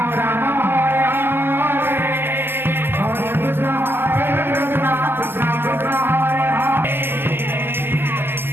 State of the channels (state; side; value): late; left; 0.10 ms